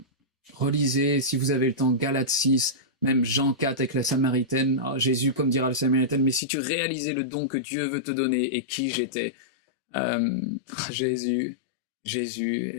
Relisez, si vous avez le temps, Galates 6, même Jean 4 avec la Samaritaine. Oh, Jésus, comme dira la Samaritaine, mais si tu réalisais le don que Dieu veut te donner et qui j'étais. Jésus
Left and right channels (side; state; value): right; drops out; at 6.4 s